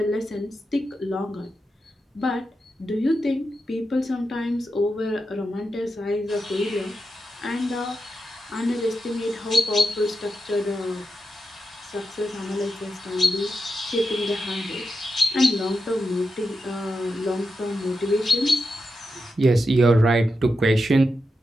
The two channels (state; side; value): normal; both; correlation 0.88